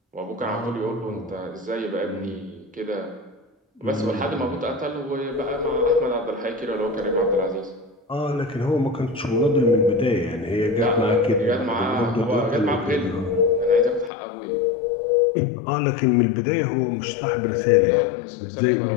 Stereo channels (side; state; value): right; drops out; at 14.1 s